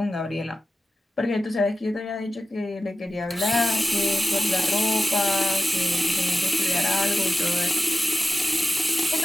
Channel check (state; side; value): normal; both; correlation 0.95